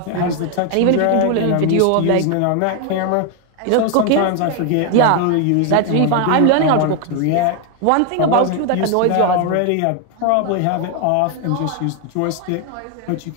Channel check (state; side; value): different; both; correlation 0.01